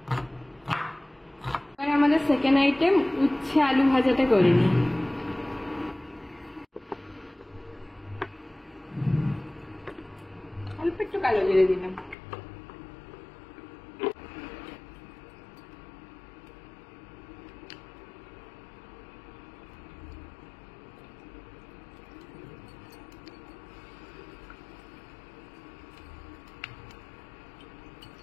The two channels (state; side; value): drops out; right; at 12.2 s